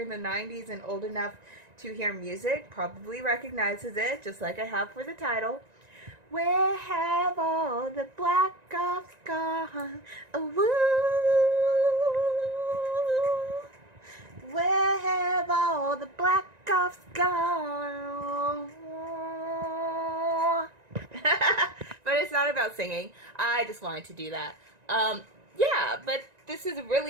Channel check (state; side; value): late; left; 1.9 ms